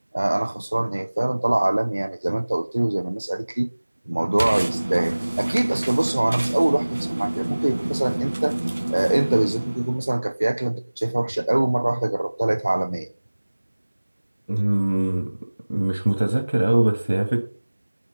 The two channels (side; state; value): both; inverted; correlation -1.00